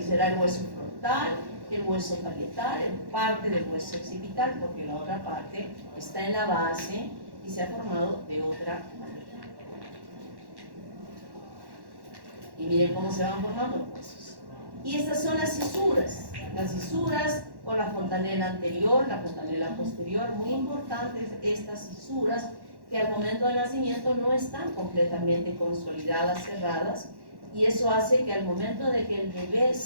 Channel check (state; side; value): late; left; 1.1 ms